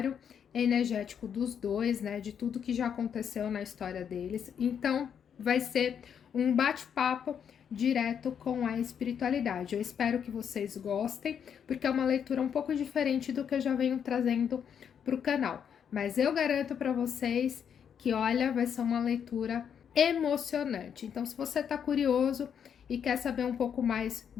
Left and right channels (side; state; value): right; quieter; 8.0 dB